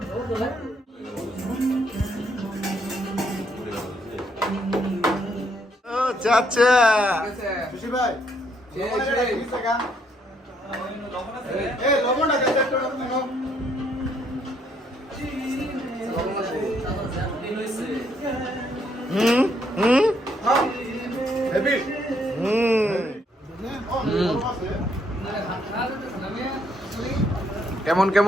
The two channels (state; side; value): normal; both; correlation 0.71